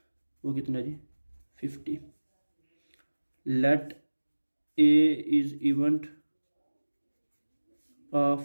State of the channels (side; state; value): both; inverted; correlation -1.00